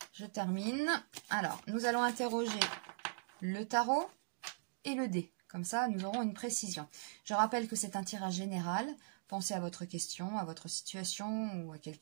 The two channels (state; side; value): silent; left; digital silence